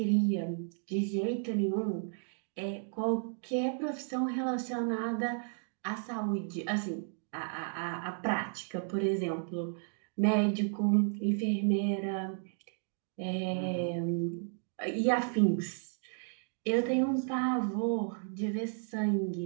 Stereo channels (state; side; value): silent; left; 56 dB below the other